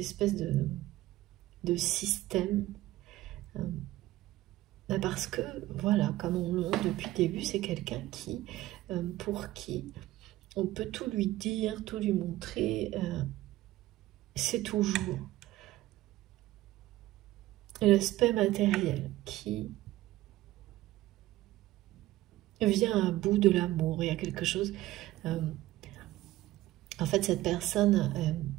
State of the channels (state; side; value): quieter; left; 16.4 dB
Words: de système. Parce que, voilà, comme on le montre depuis le début, c'est quelqu'un qui, pour qui on peut tout lui dire, tout lui montrer, c'est toujours l'aspect matériel qui vient à bout de l'amour. Il y a quelque chose... en fait, cette personne,